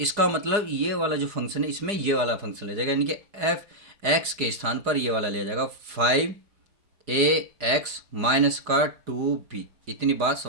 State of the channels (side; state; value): left; late; 4.9 ms